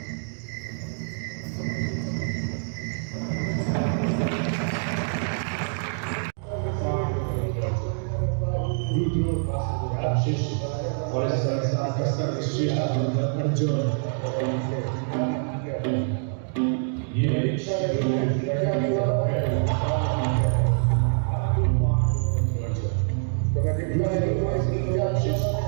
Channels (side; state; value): left; silent; digital silence